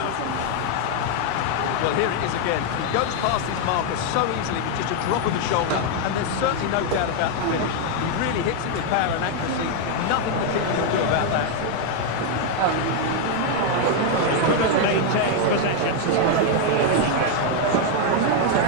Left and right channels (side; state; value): both; different; correlation 0.00